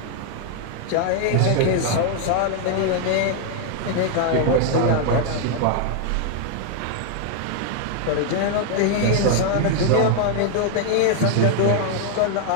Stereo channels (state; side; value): different; both; correlation 0.00